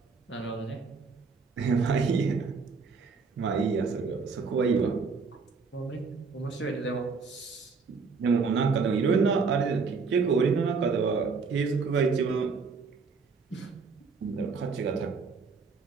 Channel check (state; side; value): quieter; left; 4.9 dB